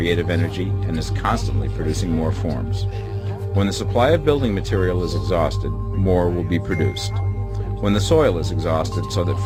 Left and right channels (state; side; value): identical; both; correlation 1.00